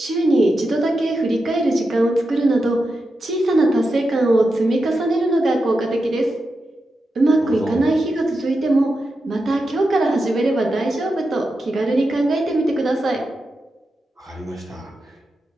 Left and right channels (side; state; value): both; normal; correlation 0.88